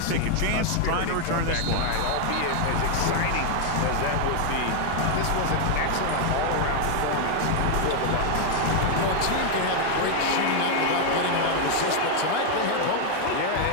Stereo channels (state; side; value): different; both; correlation 0.00